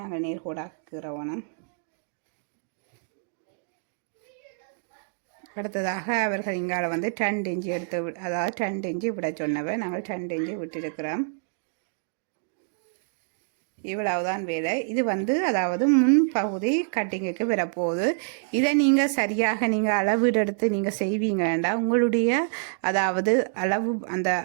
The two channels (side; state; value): left; silent; digital silence